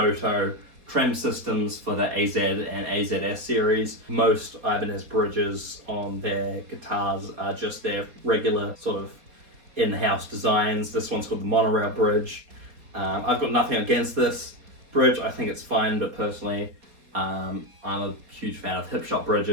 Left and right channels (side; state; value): left; late; 4.2 ms